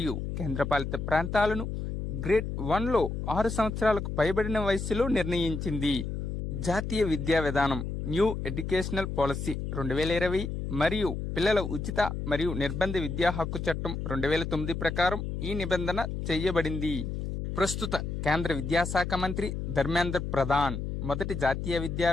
కేంద్రపాలిత ప్రాంతాలను గ్రేడ్ 1లో 6 సంవత్సరాలకు పైబడిన వయస్సులో నిర్ణయించింది. జాతీయ విద్యా విధానం న్యూ ఎడ్యుకేషనల్ పాలసీ 2020 మరియు పిల్లల ఉచిత మరియు నిర్బంధ విద్యా హక్కు చట్టం 2009 ప్రకారం ఈ నిబంధన చేయబడింది. ప్రస్తుత కేంద్ర విద్యాశాఖ మంత్రి ధర్మేంద్ర ప్రధాన్ మొదటి జాతీయ విద్యా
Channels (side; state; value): left; noise; hum, 4 dB below the sound